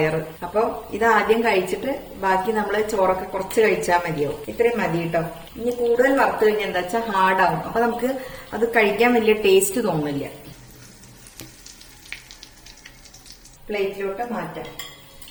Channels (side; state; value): both; identical; correlation 1.00